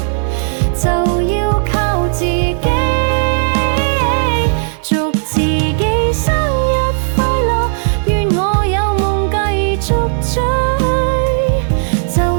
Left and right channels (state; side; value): silent; left; digital silence